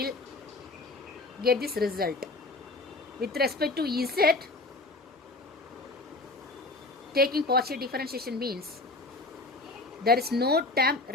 get this result. With respect to Z, taking partial differentiation means there is no term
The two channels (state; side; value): quieter; right; 3.1 dB